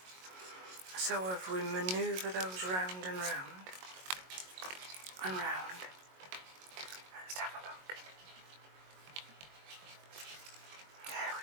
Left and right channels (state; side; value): late; left; 22 ms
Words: So if we manoeuvre those round and round and round, let's have a look. There